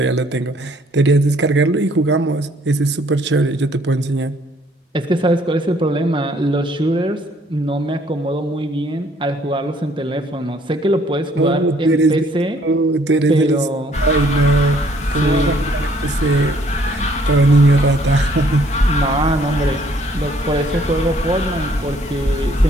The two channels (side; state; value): both; normal; correlation 0.63